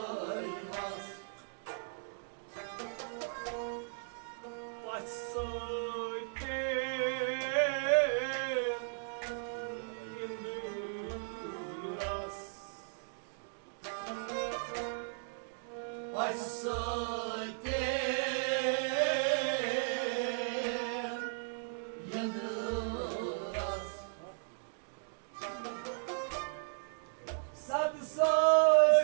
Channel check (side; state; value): left; silent; digital silence